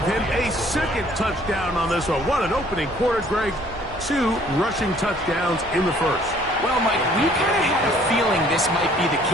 him a second touchdown on this one. What an opening quarter, Greg. 2 rushing touchdowns in the first. Well, Mike, we kind of had a feeling this might be the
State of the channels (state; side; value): normal; both; correlation 0.58